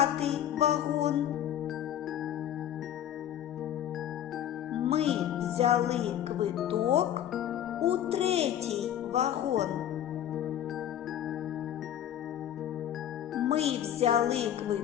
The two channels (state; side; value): quieter; right; 10.7 dB